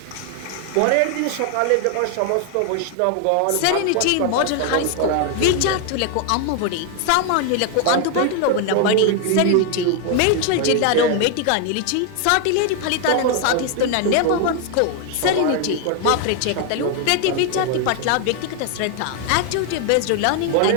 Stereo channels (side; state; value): both; different; correlation 0.01